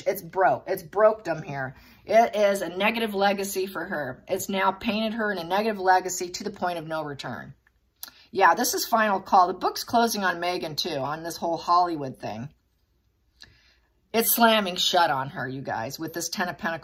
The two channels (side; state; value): both; identical; correlation 1.00